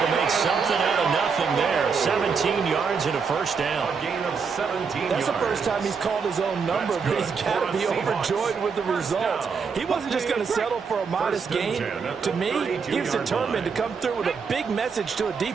to make something out of nothing there. 17 yards and a 1st down. That's the first time he's called his own number, but he's got to be overjoyed with the results. He wasn't just going to settle for a modest gain. To me, he was determined to come through with a big message to a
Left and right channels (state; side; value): quieter; left; 5.6 dB